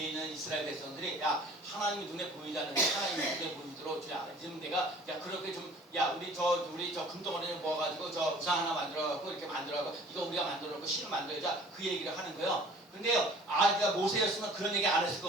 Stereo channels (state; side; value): normal; both; correlation 0.49